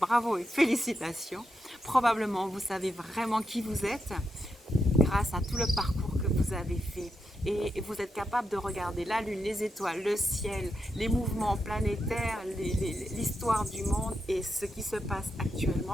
bravo et félicitations. Probablement vous savez vraiment qui vous êtes grâce à tout le parcours que vous avez fait. Et vous êtes capable de regarder la lune, les étoiles, le ciel, les mouvements planétaires, l'histoire du monde et ce qui se passe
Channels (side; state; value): both; normal; correlation 0.86